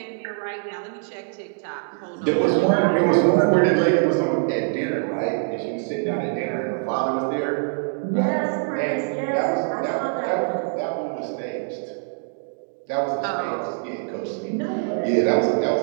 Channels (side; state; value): left; silent; 60 dB below the other